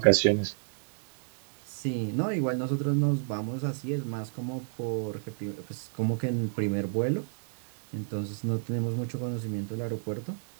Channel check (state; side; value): silent; left; digital silence